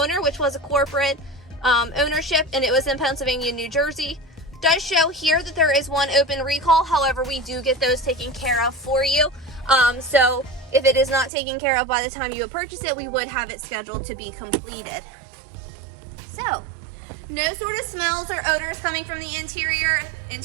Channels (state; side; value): drops out; left; at 11.3 s